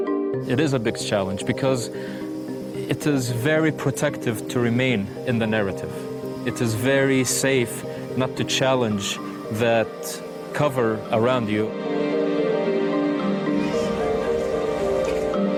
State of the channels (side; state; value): both; identical; correlation 1.00